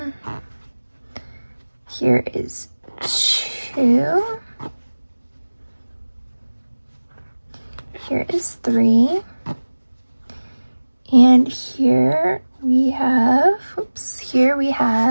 here is 2, here is 3, and here we have, here we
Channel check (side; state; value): both; inverted; correlation -1.00